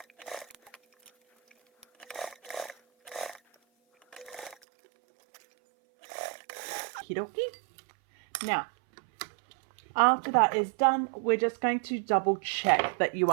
Okie dokie. Now, after that is done, we're just going to double check that you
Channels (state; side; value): drops out; left; at 4.5 s